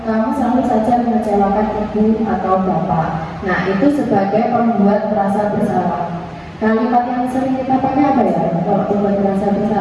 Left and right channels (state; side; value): identical; both; correlation 1.00